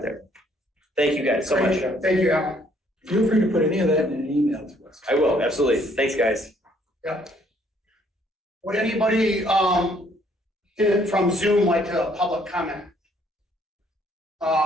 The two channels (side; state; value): both; normal; correlation 0.65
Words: there. Thank you guys so much. Thank you, Alan. Feel free to put any of that in an email to us. I will, absolutely. Thanks, guys. Yeah. Would anybody from Zoom like to public comment?